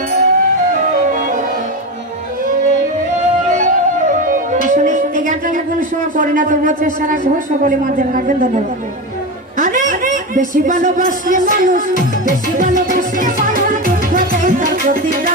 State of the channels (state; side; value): normal; both; correlation 0.19